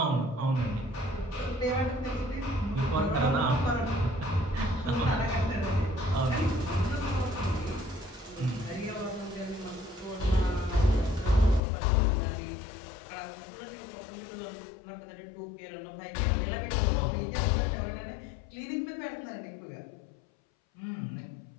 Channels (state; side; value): drops out; right; at 11.6 s